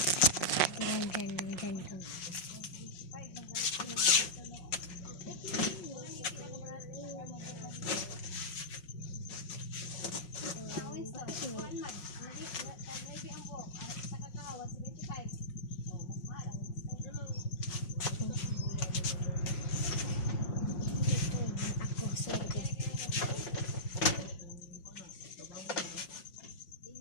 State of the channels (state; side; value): late; right; 5.5 ms